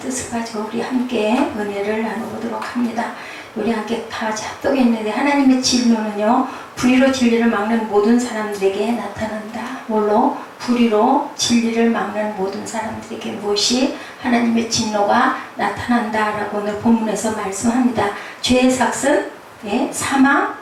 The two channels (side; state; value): both; identical; correlation 1.00